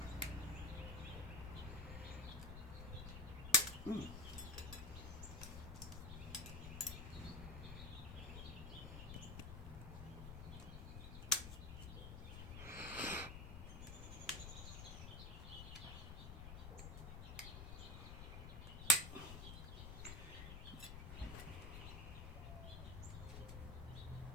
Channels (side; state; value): left; noise; rumble, 7 dB below the sound